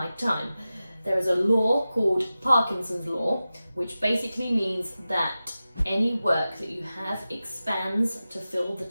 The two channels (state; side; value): inverted; both; correlation -0.94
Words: time. There is a law called Parkinson's Law, which basically means that any work that you have expands to fill the